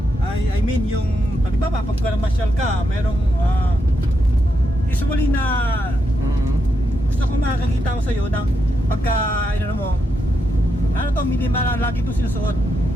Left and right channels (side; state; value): both; normal; correlation 0.83